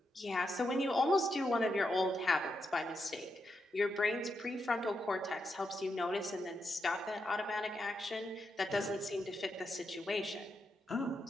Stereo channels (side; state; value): both; normal; correlation 0.84